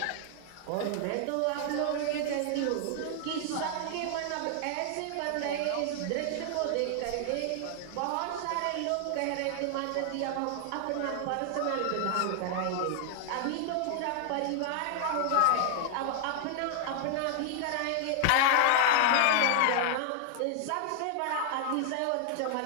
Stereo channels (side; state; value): both; different; correlation 0.00